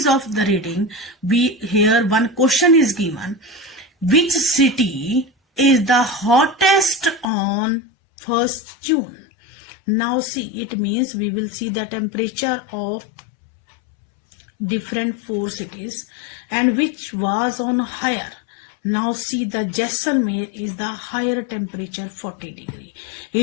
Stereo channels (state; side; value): drops out; right; at 7.2 s